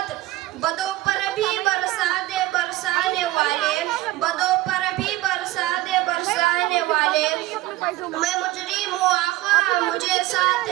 बदों पर भी बरसा दे बरसाने वाले, बदों पर भी बरसा दे बरसाने वाले। मैं मुजरिम हूँ आका, मुझे साथ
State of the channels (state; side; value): quieter; left; 17.4 dB